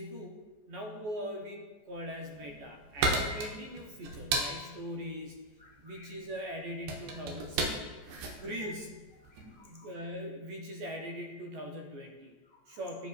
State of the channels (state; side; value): late; left; 14 ms